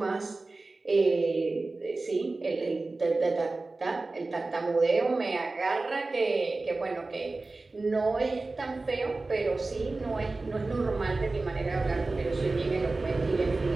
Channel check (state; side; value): quieter; left; 3.4 dB